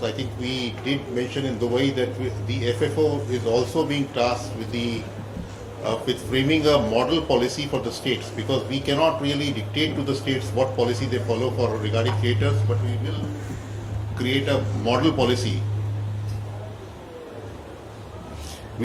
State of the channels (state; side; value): identical; both; correlation 1.00